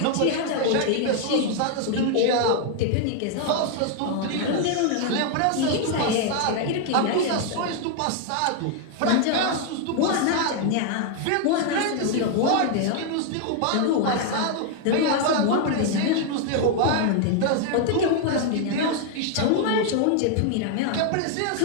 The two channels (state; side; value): different; both; correlation 0.00